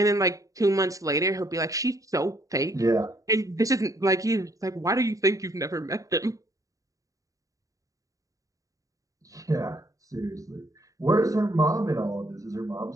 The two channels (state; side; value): late; left; 0.16 ms